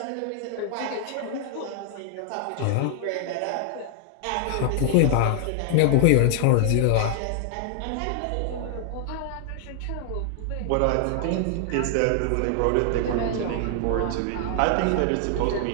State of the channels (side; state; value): both; different; correlation -0.01